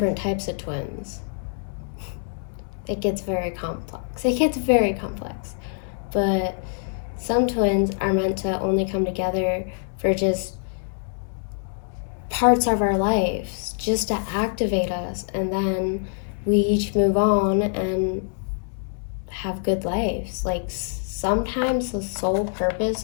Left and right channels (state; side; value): silent; right; 62 dB below the other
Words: types of twins. It gets very complex. But some twins are meant to only come together for just parts of our lives, just to activate us, and then we each move on and have good lives. Like, sometimes the sole purpose